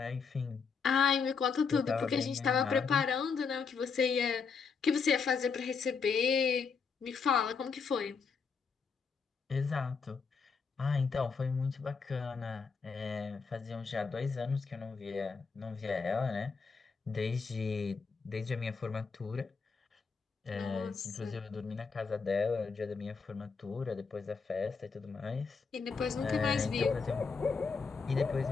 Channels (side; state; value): right; quieter; 5.3 dB